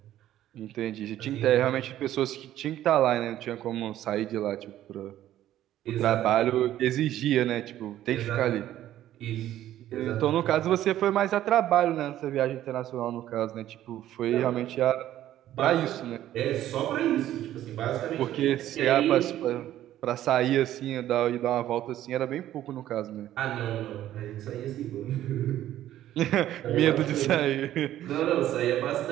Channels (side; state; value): left; quieter; 12.8 dB